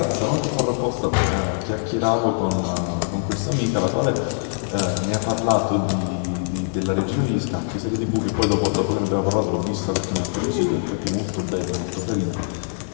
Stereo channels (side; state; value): right; silent; digital silence